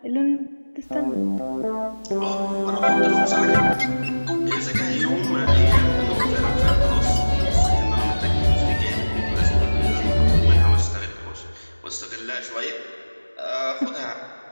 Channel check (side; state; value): both; inverted; correlation -1.00